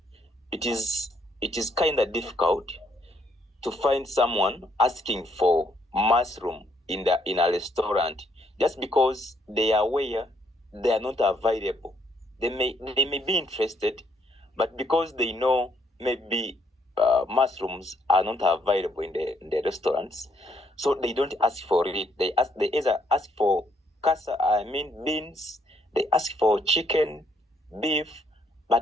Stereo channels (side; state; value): both; normal; correlation 0.70